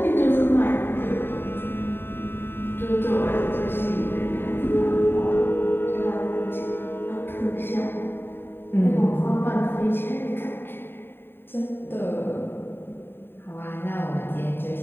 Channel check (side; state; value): right; late; 0.11 ms